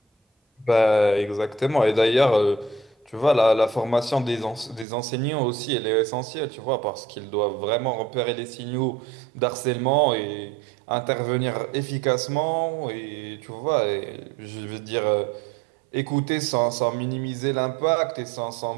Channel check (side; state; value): left; drops out; at 4.9 s